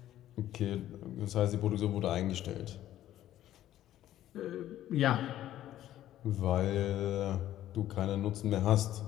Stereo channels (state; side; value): quieter; right; 12.8 dB